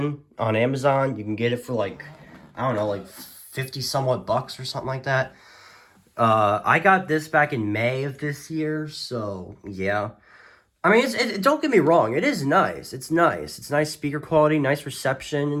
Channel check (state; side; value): identical; both; correlation 1.00